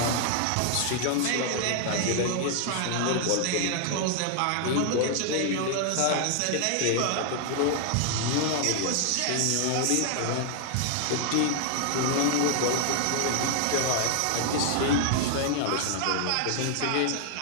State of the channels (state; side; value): different; both; correlation 0.00